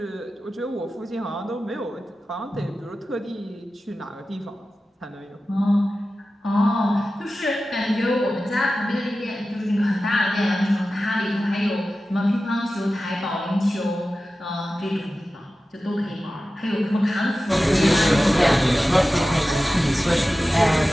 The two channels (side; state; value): both; normal; correlation 0.94